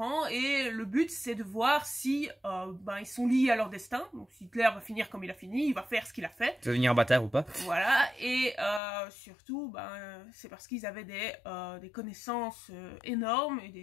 et le but c'est de voir si ils sont liés à leur destin. Donc si Hitler va finir comme il a fini, il va faire ce qu'il a fait. Ça va devenir un bâtard ou pas. Voilà, et surtout c'est parce qu'ils avaient des connaissances énormes et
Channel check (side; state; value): right; drops out; at 8.8 s